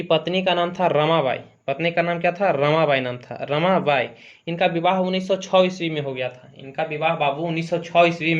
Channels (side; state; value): both; identical; correlation 1.00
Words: पत्नी का नाम था रमाबाई। पत्नी का नाम क्या था? रमाबाई नाम था, रमाबाई। इनका विवाह 1906 ईस्वी में हो गया था। इनका विवाह बाबू 1906 ईस्वी